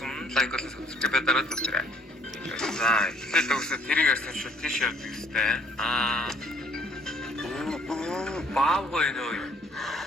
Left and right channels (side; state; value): both; normal; correlation 0.61